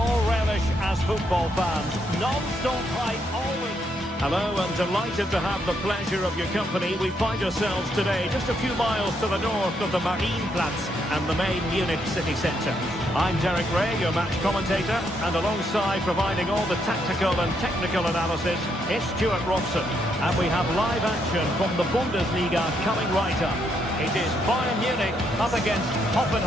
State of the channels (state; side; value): normal; both; correlation 0.76